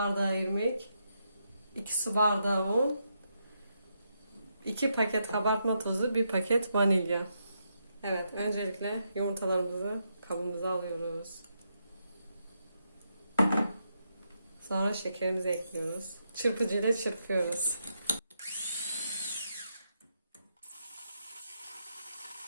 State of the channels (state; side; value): inverted; both; correlation -0.81